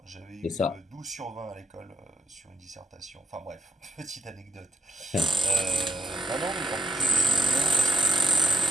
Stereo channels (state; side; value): normal; both; correlation 0.81